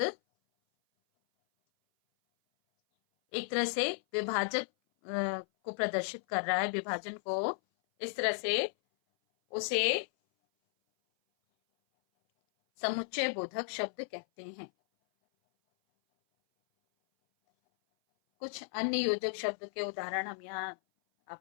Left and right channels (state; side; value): silent; right; 55 dB below the other